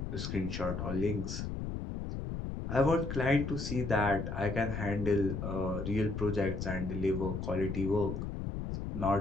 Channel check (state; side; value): noise; left; rumble, 4 dB below the sound